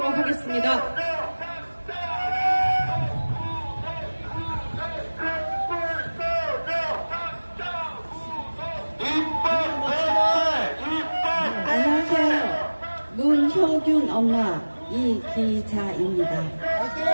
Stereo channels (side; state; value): both; inverted; correlation -1.00